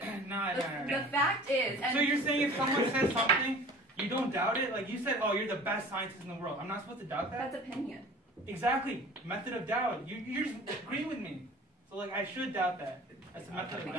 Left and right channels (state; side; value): normal; both; correlation 0.44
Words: No. The fact is, and So you're saying if someone says something, you don't doubt it? Like you said, oh, you're the best scientist in the world. I'm not supposed to doubt that? that's opinion. Exactly. Method of doubt. You just agree with me. So like I should doubt that. That's a method of But